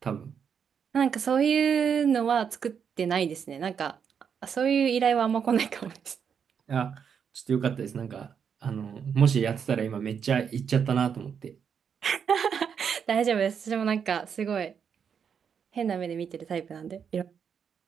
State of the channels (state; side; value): quieter; left; 7.2 dB